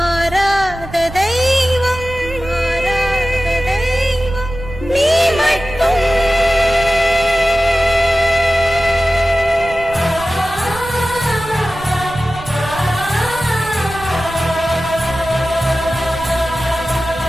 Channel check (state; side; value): noise; right; rumble, 14 dB below the sound